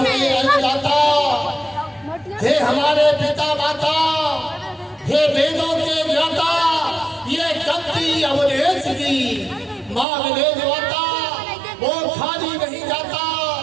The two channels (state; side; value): drops out; left; at 10.1 s